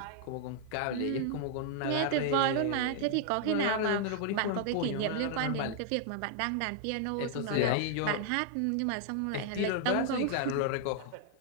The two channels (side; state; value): both; different; correlation -0.01